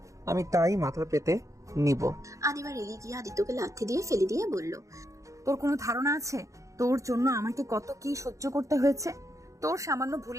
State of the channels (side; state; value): left; late; 0.15 ms